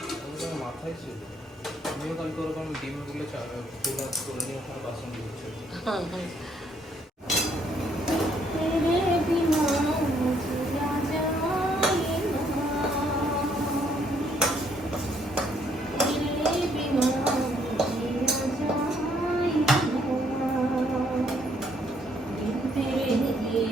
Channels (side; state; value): both; normal; correlation 0.68